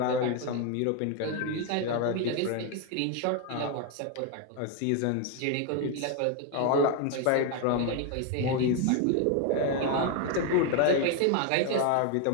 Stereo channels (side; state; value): both; different; correlation 0.01